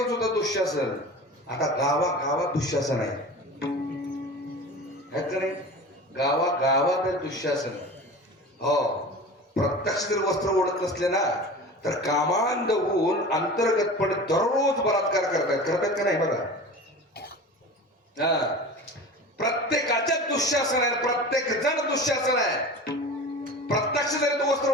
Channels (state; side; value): normal; both; correlation 0.35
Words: होतं दुःशासन, आता गावागावात दुःशासन आहे. नाही गावागावात दुःशासन. हो, प्रत्यक्ष जर वस्त्र ओढत नसले ना तर कामांध होऊन अंतर्गतपणे दररोज बलात्कार करतात का नाही? बघा, प्रत्येकाच्याच दुःशासन आहे, प्रत्येक जण दुःशासन आहे. प्रत्यक्ष जरी तो वस्त्र